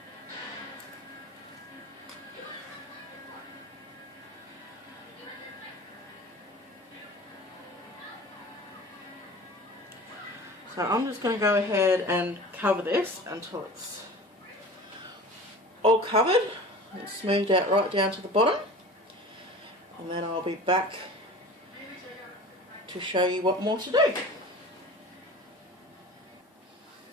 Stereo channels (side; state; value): both; normal; correlation 0.39